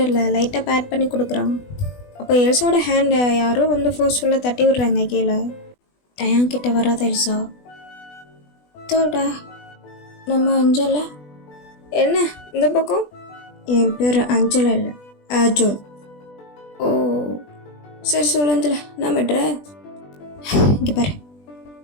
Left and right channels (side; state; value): right; late; 20 ms